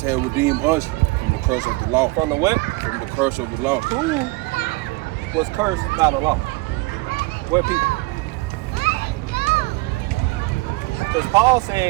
had redeemed us from the curse of the law. From the what? From the curse of the law. Who was cursed by the law? What people? Because Paul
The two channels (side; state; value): left; quieter; 23.4 dB